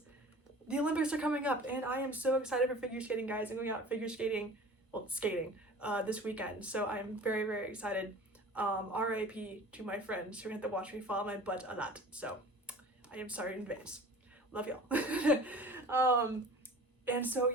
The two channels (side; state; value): both; normal; correlation 0.42